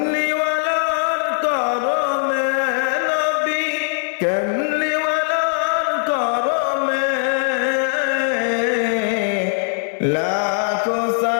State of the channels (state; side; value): silent; right; digital silence